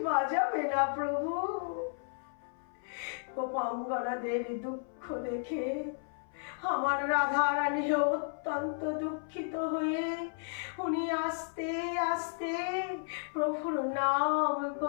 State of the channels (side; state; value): right; silent; 55 dB below the other